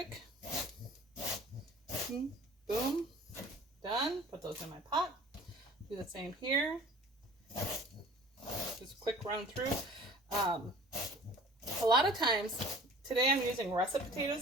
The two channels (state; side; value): normal; both; correlation 0.47